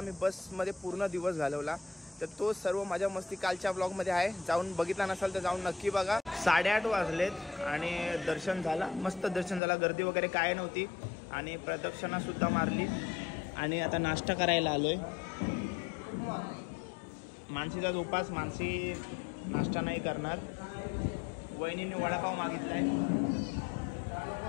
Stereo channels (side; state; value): right; drops out; at 9.6 s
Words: बसमध्ये पूर्ण दिवस घालवला. तर तो सर्व मजा मस्ती कालच्या ब्लॉगमध्ये आहे. जाऊन बघितला नसाल तर जाऊन नक्की बघा. 8:30 वाजलेत आणि दर्शन झाला, मस्त दर्शन झाला. गर्दी वगैरे काय नव्हती आणि प्रदक्षिणा सुद्धा मारली आणि आता नाश्ता करायला आलोय. मानसीचा उपास, मानसी नाश्ता नाही करणार. वहिनीने वडापाव मागितलाय.